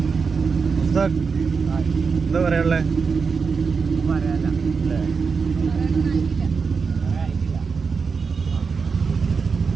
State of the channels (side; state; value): left; quieter; 5.2 dB